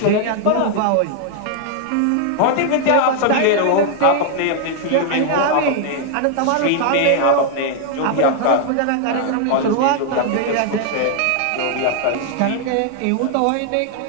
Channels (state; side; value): different; both; correlation 0.00